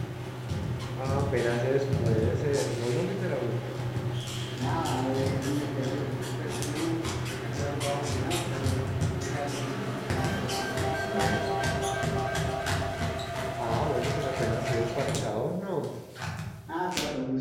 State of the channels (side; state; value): both; identical; correlation 1.00